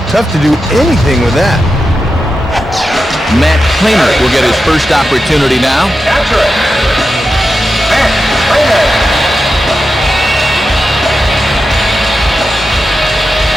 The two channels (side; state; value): both; normal; correlation 0.90